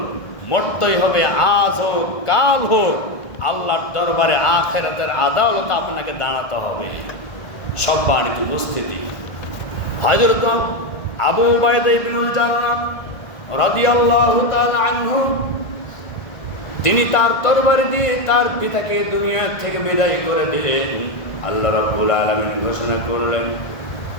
মরতেই হবে, আজ হোক কাল হোক, আল্লাহর দরবারে আখিরাতের আদালতে আপনাকে দাঁড়াতে হবে। সম্মানিত উপস্থিতি, হযরত আবু উবাইদা ইবনুল জাররাহ রাদিয়াল্লাহু তাআলা আনহু, তিনি তার তরবারি দিয়ে তার পিতাকে দুনিয়া থেকে বিদায় করে দিলেন। আল্লাহ রাব্বুল আলামিন ঘোষণা করলেন,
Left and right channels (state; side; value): late; right; 1.4 ms